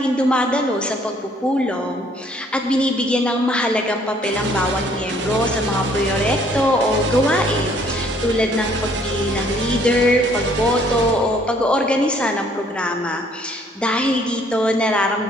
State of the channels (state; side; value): normal; both; correlation 0.62